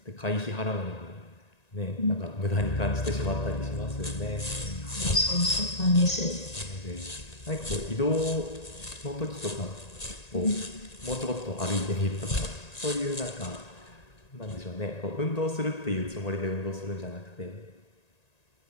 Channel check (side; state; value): right; late; 1.9 ms